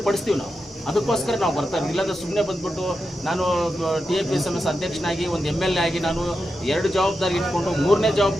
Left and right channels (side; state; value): both; normal; correlation 0.88